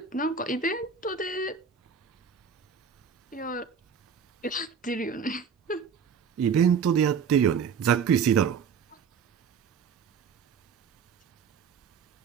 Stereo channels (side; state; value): left; quieter; 6.3 dB